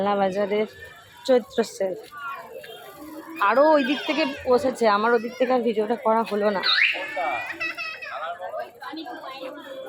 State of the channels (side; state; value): both; identical; correlation 1.00